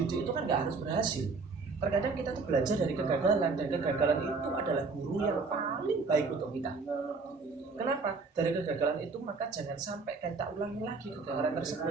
itu kan nggak harus berhasil. Terkadang kita tuh belajar dari kegagalan, dan kegagalan itu adalah guru yang paling baik untuk kita. Kenapa? Dari kegagalan itu maka jangan sampai kita ulangi lagi kegagalan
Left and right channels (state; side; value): quieter; left; 4.2 dB